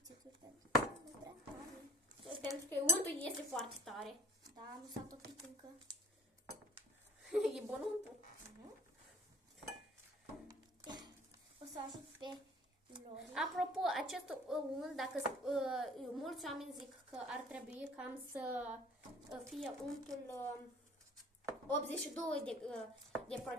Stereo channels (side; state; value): both; normal; correlation 0.50